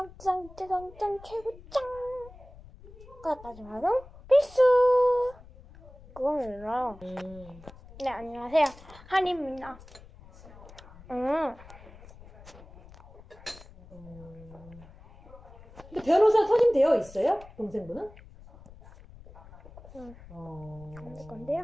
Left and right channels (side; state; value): left; noise; rumble, 20 dB below the sound